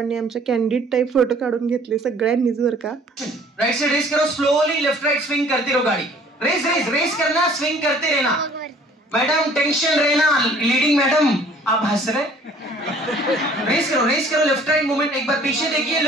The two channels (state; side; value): normal; both; correlation 0.54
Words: आमच्या कॅन्डिड टाईप फोटो काढून घेतले सगळ्यांनीच बरं का. राइट से रेस करो, स्लोली लेफ्ट राइट स्विंग करते रहो गाड़ी. रेस रेस रेस करना, स्विंग करते रहना. मैडम टेंशन रहना, लीडिंग मैडम आप हंस रहे. रेस करो लेफ्ट राइट मूवमेंट. एक बार पीछे देखिए,